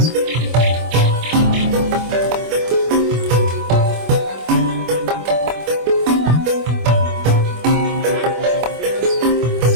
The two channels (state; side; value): late; left; 25 ms